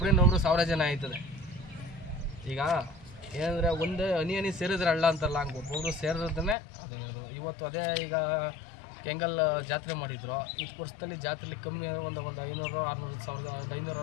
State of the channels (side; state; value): right; drops out; at 6.6 s